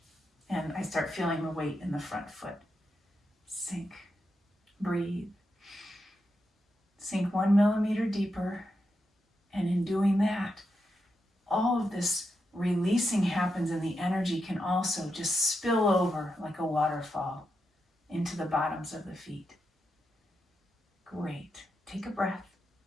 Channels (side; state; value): both; normal; correlation 0.86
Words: and I start feeling the weight in the front foot. Sink, breathe, sink 1 millimeter deeper, and in doing that, all of this releasing happens, and the energy can also just spill over like a waterfall into the bottoms of the feet. Great. Take a breath.